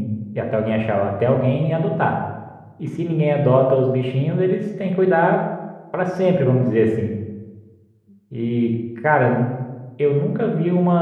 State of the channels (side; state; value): both; identical; correlation 1.00